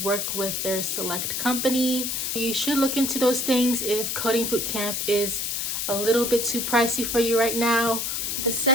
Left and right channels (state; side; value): noise; left; hiss, 1 dB below the sound